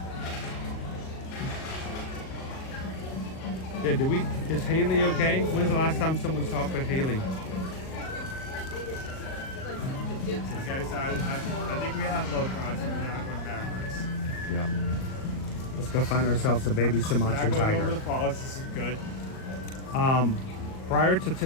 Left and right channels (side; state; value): right; late; 38 ms